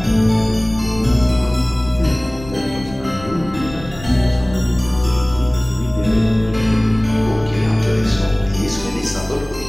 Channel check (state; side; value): noise; left; rumble, 16 dB below the sound